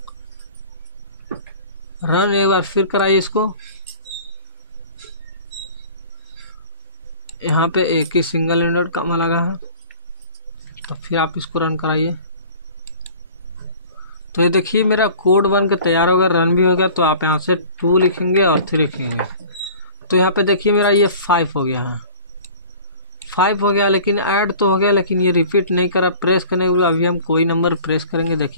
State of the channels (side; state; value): both; inverted; correlation -0.45